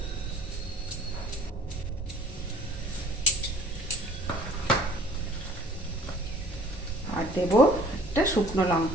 আর দেব একটা শুকনো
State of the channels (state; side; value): normal; both; correlation 0.52